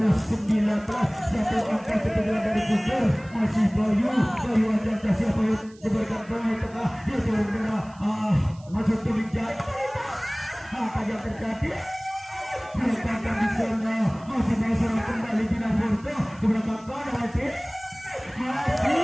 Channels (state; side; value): noise; right; hiss, 27 dB below the sound